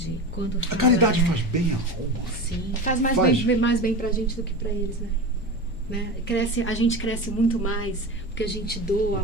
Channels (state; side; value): normal; both; correlation 0.28